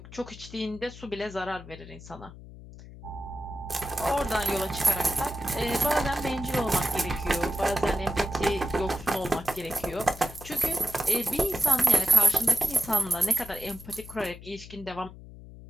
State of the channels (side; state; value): left; noise; hum, 16 dB below the sound